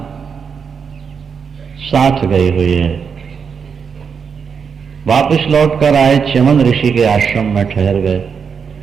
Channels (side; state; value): left; quieter; 6.3 dB